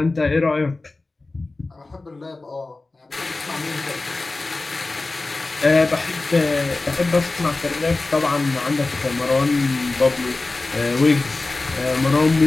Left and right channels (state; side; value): quieter; right; 3.3 dB